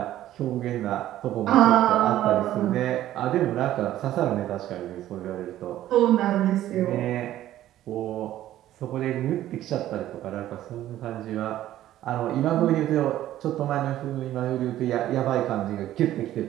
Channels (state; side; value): quieter; left; 13.3 dB